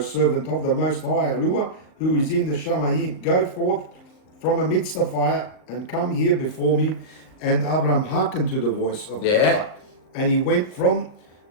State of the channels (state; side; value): late; right; 39 ms